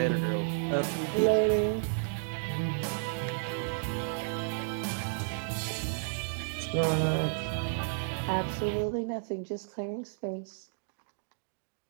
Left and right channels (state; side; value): silent; left; digital silence